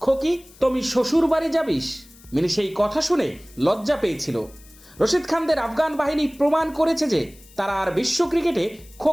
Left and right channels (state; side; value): noise; left; hiss, 24 dB below the sound